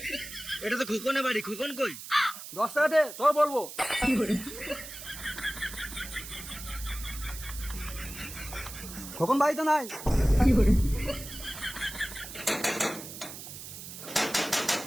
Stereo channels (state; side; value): noise; right; hiss, 11 dB below the sound